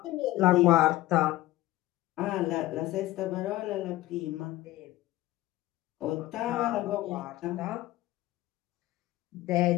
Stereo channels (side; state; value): right; quieter; 16.7 dB